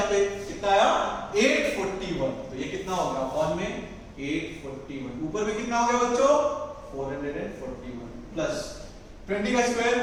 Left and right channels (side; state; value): both; identical; correlation 1.00